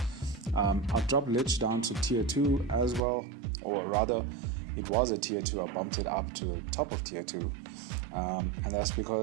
I've dropped Lich down to tier 2 as well, or rather, it was a tier 2, I bumped it up to the top of tier 2. And that's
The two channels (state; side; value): drops out; left; at 3.0 s